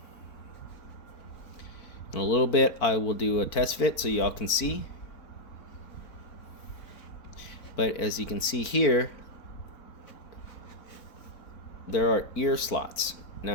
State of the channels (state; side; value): late; right; 4.5 ms